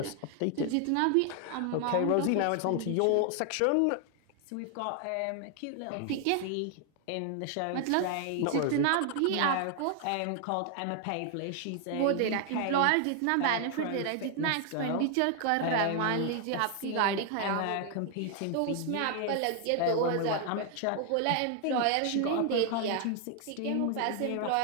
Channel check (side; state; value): both; different; correlation 0.00